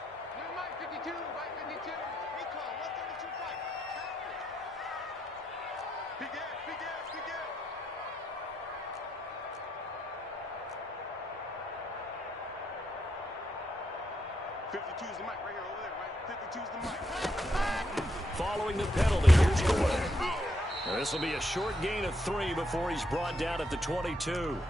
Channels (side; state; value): both; normal; correlation 0.78